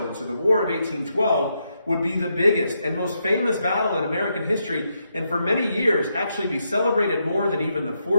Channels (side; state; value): both; inverted; correlation -0.81